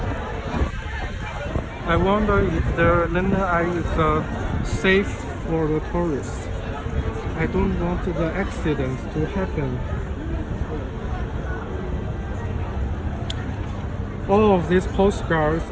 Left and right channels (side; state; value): both; identical; correlation 1.00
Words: I wonder if the London Eye is safe for the tourists. I don't want the accidents to happen. All of these postcards